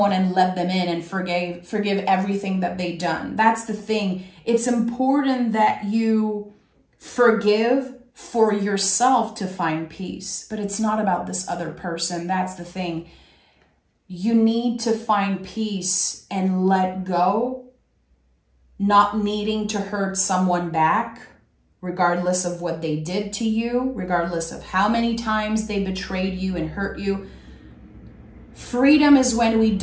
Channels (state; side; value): identical; both; correlation 1.00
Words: and let them in and forgive everything that they've done. That's the thing. It's important that you forgive for yourself to find peace, but it's not about this other person. That's the thing. You need to find peace and let go, not needing to hurt someone back, regardless of what they did to you, regardless of how many times they betrayed you and hurt you. Freedom is when we